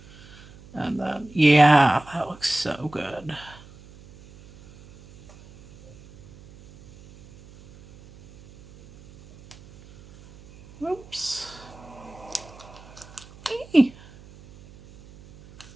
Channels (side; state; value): right; noise; hum, 22 dB below the sound